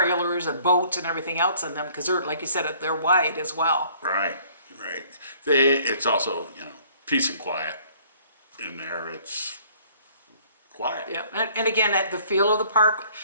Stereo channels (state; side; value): inverted; both; correlation -0.58